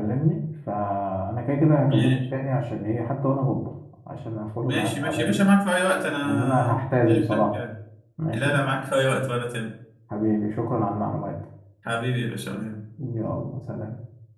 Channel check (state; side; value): identical; both; correlation 1.00